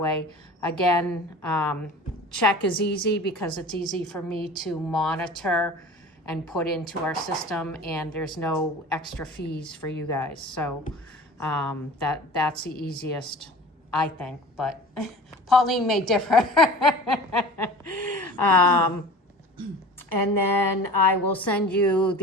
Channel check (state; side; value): normal; both; correlation 0.39